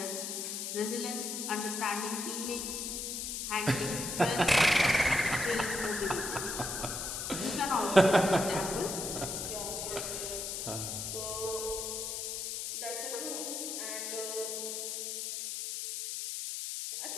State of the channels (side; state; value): left; noise; hiss, 4 dB below the sound